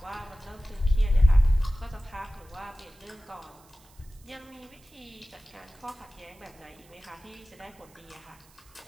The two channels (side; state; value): right; noise; hiss, 27 dB below the sound